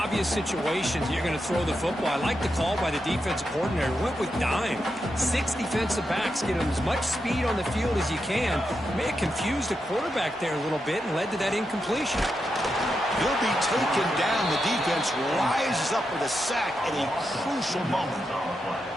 situations, you're going to throw the football. I like the call by the defensive coordinator. Went with dime. 6 defensive backs, get them as much speed on the field as you can. May have confused the quarterback there a little bit and led to that incompletion. He'll be taken down. The defense rises up with a sack at a crucial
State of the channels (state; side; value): normal; both; correlation 0.86